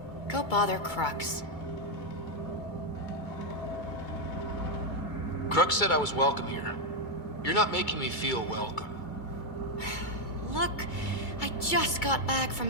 Go bother Crux. Crux said I was welcome here. You're not making me feel welcome. Look, I just got back from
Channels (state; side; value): late; right; 2.3 ms